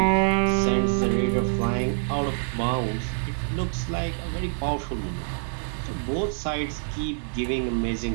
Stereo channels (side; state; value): left; silent; digital silence